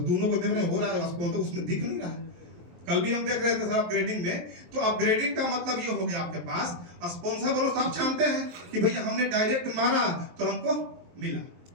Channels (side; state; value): left; late; 23 ms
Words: दोनों को देख रहे हो रहा है, स्पॉन्सर उसमें दिख नहीं रहा है। कल भी हम देख रहे थे सर अपग्रेडिंग में। तो अपग्रेडिंग का मतलब ये हो गया आपके पास स्पॉन्सर बोनस। आप जानते हैं कि भैया हमने डायरेक्ट मारा तो हमको मिला।